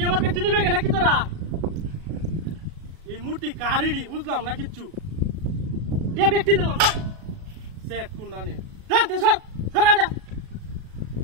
আমার বেতন নিবে নাকি তোরা এই মূর্তি কারিডি বুঝলাম না কিচ্ছু টিয়া ব্যক্তি দিলাম সেট কুন্ডানে জানতে স্যার সরা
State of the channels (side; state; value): left; late; 37 ms